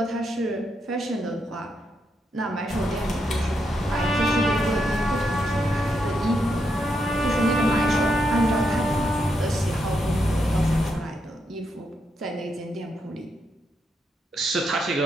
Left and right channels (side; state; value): both; normal; correlation 0.81